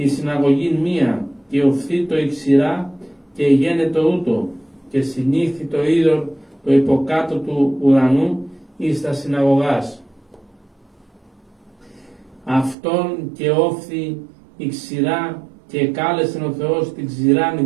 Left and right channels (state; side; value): drops out; left; at 12.8 s